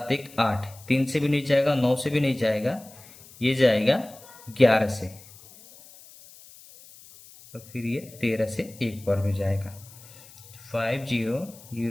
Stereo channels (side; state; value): left; noise; hiss, 21 dB below the sound